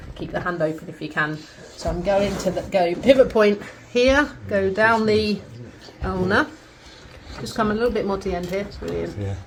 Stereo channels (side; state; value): both; identical; correlation 1.00